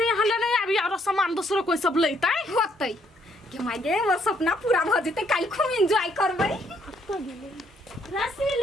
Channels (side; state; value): both; normal; correlation 0.70